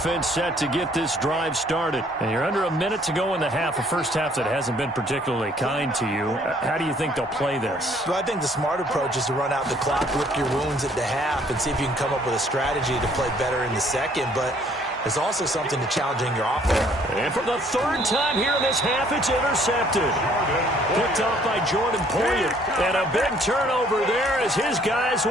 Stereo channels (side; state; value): both; normal; correlation 0.61